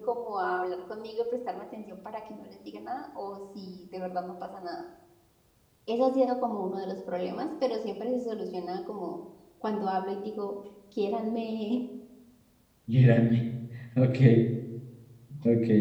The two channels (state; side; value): identical; both; correlation 1.00